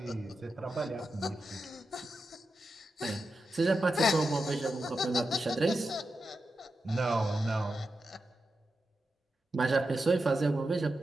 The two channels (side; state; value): both; normal; correlation 0.89